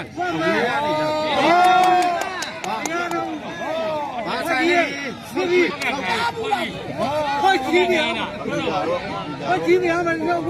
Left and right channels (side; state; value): both; identical; correlation 1.00